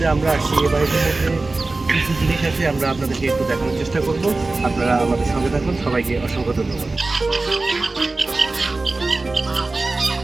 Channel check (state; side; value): quieter; left; 3.3 dB